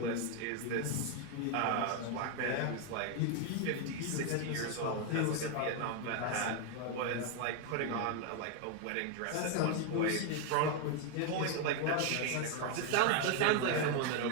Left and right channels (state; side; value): different; both; correlation 0.01